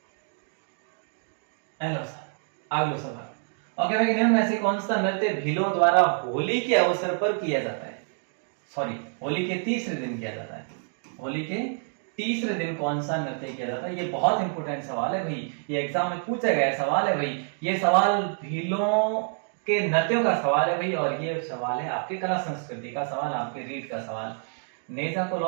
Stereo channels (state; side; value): silent; left; 57 dB below the other